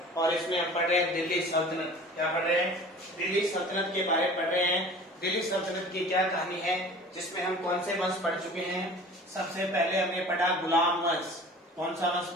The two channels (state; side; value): normal; both; correlation 0.43